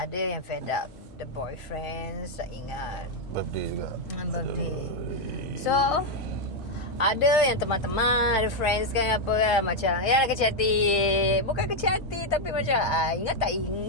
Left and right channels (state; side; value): normal; both; correlation 0.01